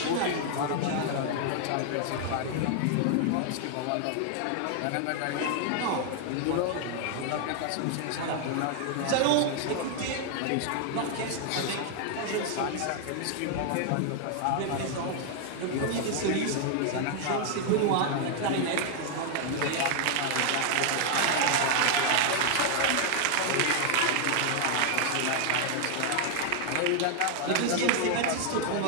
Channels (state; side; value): different; both; correlation 0.00